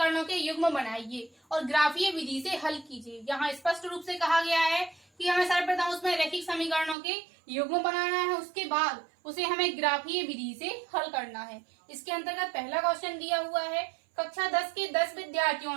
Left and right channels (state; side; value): drops out; left; at 7.0 s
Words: के युग्म बनाइए और ग्राफीय विधि से हल कीजिए। यहाँ स्पष्ट रूप से कहा गया है कि हमें सर्वप्रथम उसमें रैखिक समीकरणों के युग्म बनाना है, उसके बाद उसे हमें ग्राफीय विधि से हल करना है। इसके अंतर्गत पहला क्वेश्चन दिया हुआ है, कक्षा 10 के 10